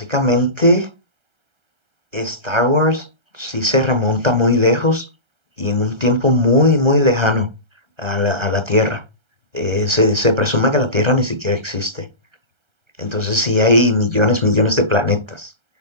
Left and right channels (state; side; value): late; left; 1.3 ms